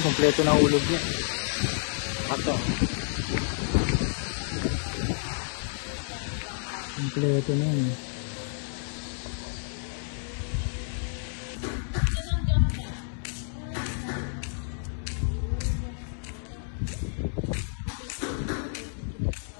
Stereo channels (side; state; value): right; silent; digital silence